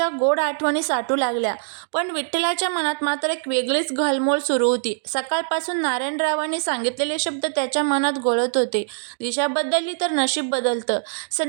गोड आठवणी साठू लागल्या. पण विठ्ठलाच्या मनात मात्र एक वेगळीच घालमोल सुरू होती. सकाळपासून नारायणरावांनी सांगितलेले शब्द त्याच्या मनात घोळत होते. दिशा बदलली तर नशीब बदलतं.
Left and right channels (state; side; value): silent; left; digital silence